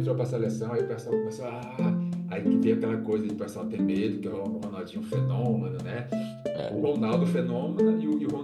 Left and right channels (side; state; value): both; identical; correlation 1.00